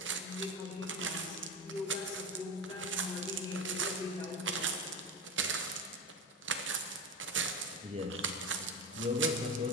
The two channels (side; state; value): both; normal; correlation 0.22